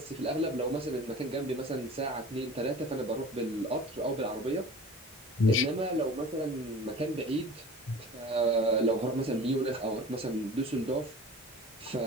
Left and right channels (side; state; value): both; normal; correlation 0.41